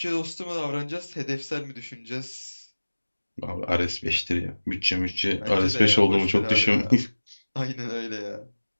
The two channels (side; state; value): both; inverted; correlation -1.00